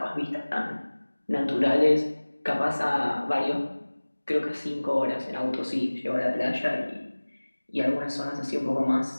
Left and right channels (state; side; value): inverted; both; correlation -1.00